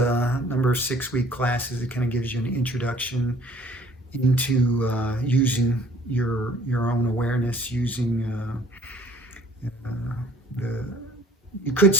number of 6-week classes. It kind of gives you an introduction into using your own awareness, using the you could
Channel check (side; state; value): both; normal; correlation 0.55